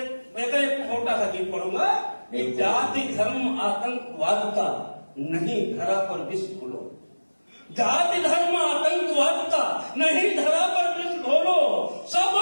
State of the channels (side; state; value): both; inverted; correlation -1.00